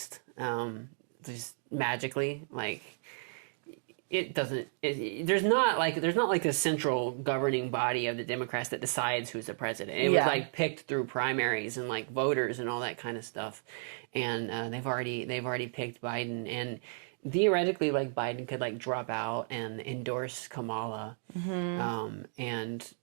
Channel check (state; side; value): silent; left; digital silence